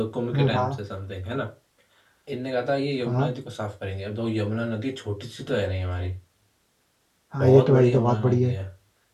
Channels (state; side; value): identical; both; correlation 1.00